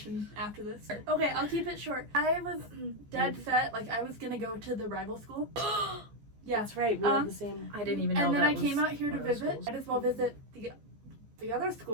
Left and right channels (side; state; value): left; late; 14 ms